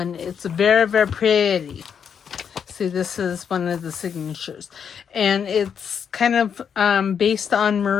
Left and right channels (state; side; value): quieter; right; 7.4 dB